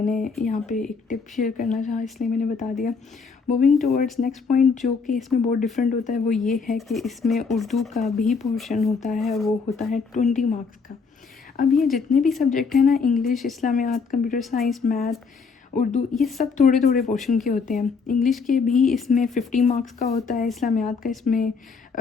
यहाँ पे एक टिप शेयर करना चाहा इसलिए मैंने बता दिया। मूविंग टूवर्ड्स नेक्स्ट पॉइंट जो कि इसमें बहुत डिफरेंट होता है वो ये है कि इसमें उर्दू का भी पोर्शन होता है, वो होता है 20 मार्क्स का। अब ये जितने भी सब्जेक्ट हैं ना, English, Islamiyat, computer science, math, Urdu, ये सब थोड़े थोड़े पोर्शन के होते हैं। इंग्लिश के भी इसमें 50 मार्क्स का होता है, इस्लामियात का इसमें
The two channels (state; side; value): quieter; right; 5.0 dB